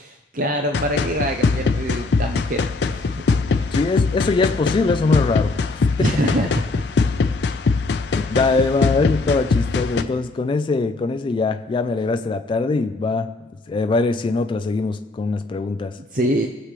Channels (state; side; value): quieter; right; 3.1 dB